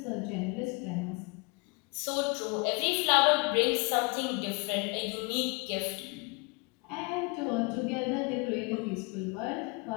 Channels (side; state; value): right; quieter; 29.4 dB